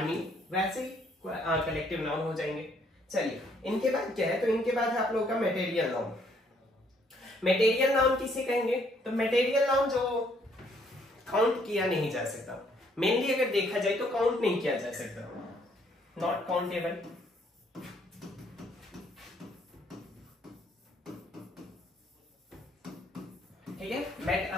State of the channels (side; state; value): both; normal; correlation 0.67